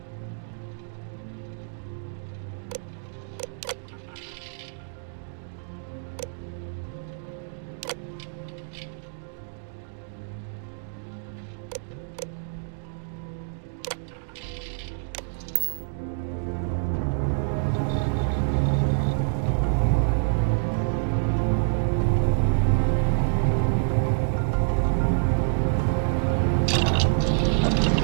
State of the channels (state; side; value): silent; left; digital silence